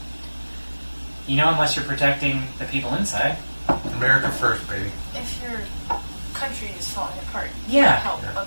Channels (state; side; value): inverted; both; correlation -1.00